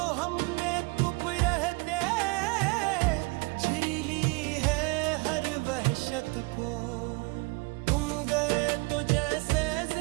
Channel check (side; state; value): left; quieter; 27.9 dB